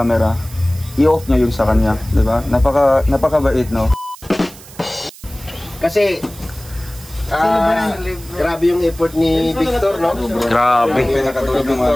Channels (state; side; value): noise; right; hiss, 20 dB below the sound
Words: i-off niya yung sa kanya, di ba? Napakabait, no? Kasi grabe yung effort ni Victor, no? Grabe.